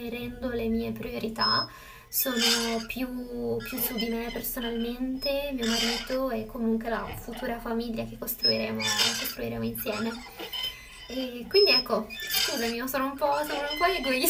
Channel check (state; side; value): identical; both; correlation 1.00